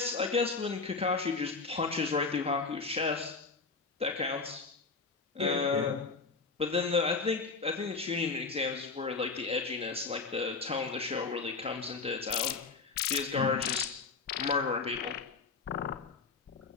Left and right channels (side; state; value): right; quieter; 4.4 dB